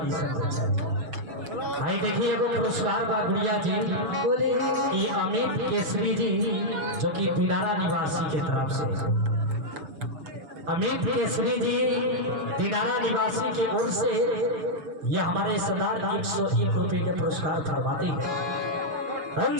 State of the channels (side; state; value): left; late; 6.7 ms